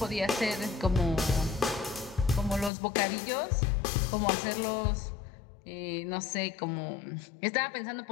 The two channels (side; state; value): right; drops out; at 2.7 s